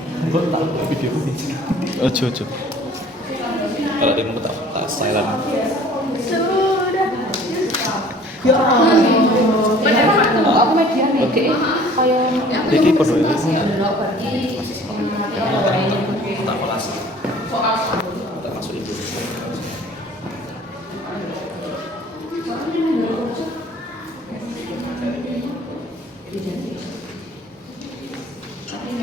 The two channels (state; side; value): normal; both; correlation 0.50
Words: Gue tak video ini. Ojo. Kalau dia mau tak silent. Aku media nih. Kayak Iki podo ya. Tak kelas. Tak masuk itu.